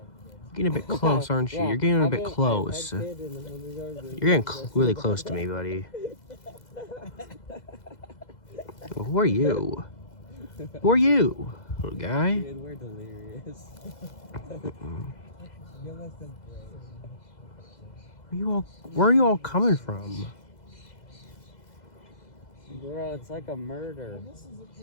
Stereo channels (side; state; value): right; late; 2.0 ms